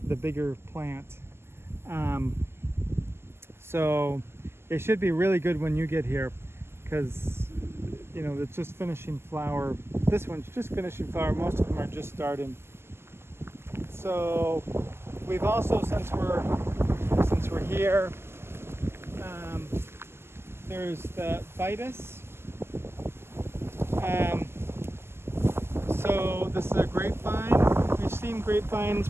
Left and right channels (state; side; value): late; left; 0.12 ms